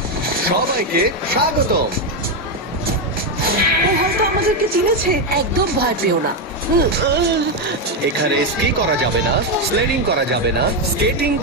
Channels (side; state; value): both; normal; correlation 0.06